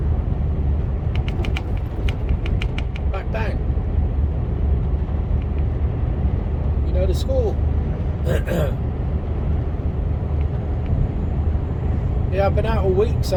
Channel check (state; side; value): identical; both; correlation 1.00